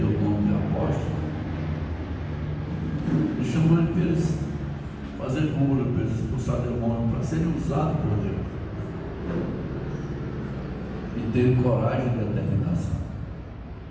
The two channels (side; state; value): both; identical; correlation 1.00